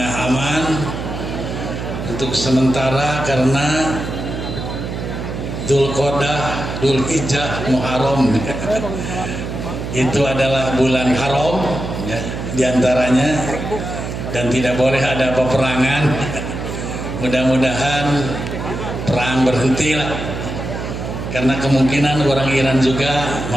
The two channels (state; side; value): noise; right; hum, 6 dB below the sound